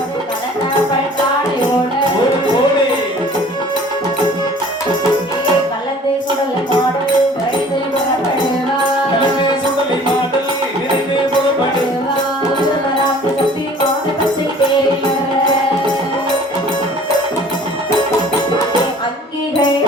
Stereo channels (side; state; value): both; normal; correlation 0.49